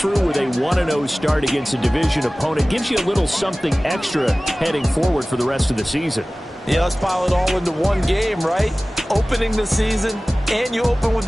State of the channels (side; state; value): both; normal; correlation 0.98